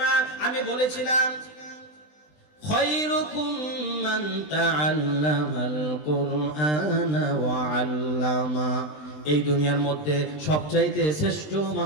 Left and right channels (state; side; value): late; right; 20 ms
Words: না, আমি বলেছিলাম খায়রুকুম মান তাআল্লামাল কুরআনা ওয়া আল্লামা, এই দুনিয়ার মধ্যে সবচাইতে শ্রেষ্ঠ